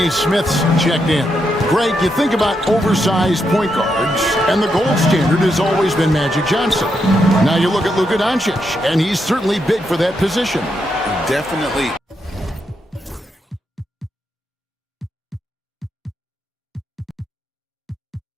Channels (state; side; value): normal; both; correlation 0.81